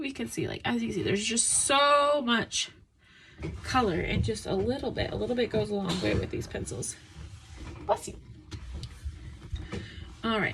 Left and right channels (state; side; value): identical; both; correlation 1.00